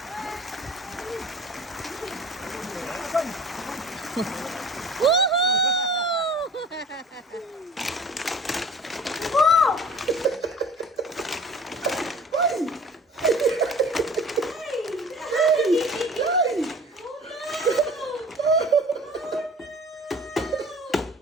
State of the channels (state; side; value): normal; both; correlation 0.45